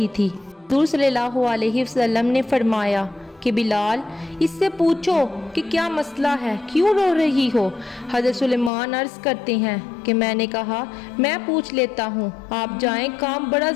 थी। हज़ूर सल्लल्लाहु अलैहि वसल्लम ने फरमाया कि बिलाल, इससे पूछो कि क्या मसला है, क्यों रो रही हो। हज़रत सुलेमान अर्ज़ करते हैं कि मैंने कहा मैं पूछ लेता हूँ, आप जाएं, काम बड़ा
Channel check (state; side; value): drops out; right; at 8.7 s